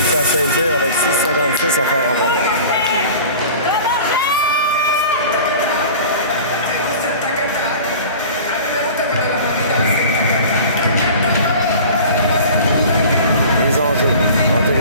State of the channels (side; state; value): both; inverted; correlation -0.40